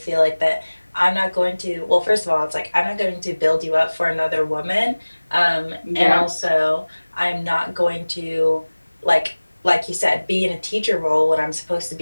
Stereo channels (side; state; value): both; inverted; correlation -1.00